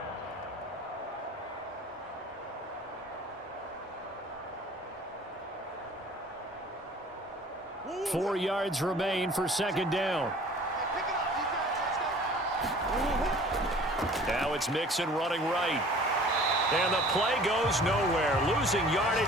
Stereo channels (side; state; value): both; normal; correlation 0.48